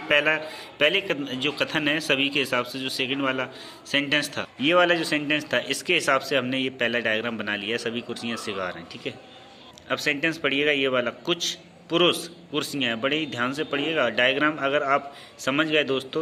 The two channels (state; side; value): identical; both; correlation 1.00